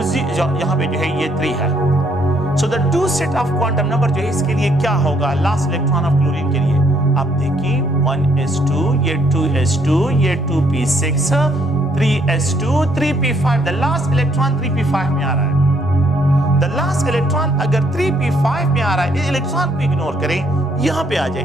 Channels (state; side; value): normal; both; correlation 0.68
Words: 0। यहाँ पे जो है ये 3 है। So the two set of quantum number जो है इसके लिए क्या होगा लास्ट इलेक्ट्रॉन ऑफ क्लोरीन के लिए, आप देखिए 1s2, ये 2s2, ये 2p6, 3s2, 3p5। The last electron 3p5 में आ रहा है। द लास्ट इलेक्ट्रॉन अगर 3p5 में आ रहा है, इस इलेक्ट्रॉन को इग्नोर करें, यहाँ पे आ जाए